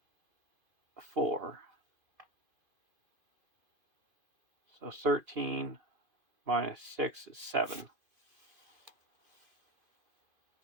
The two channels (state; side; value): late; left; 2.5 ms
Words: 4. So 13 minus 6 is 7.